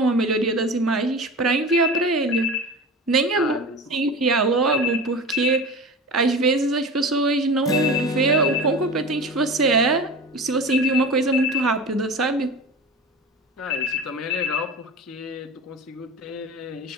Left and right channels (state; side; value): normal; both; correlation 0.32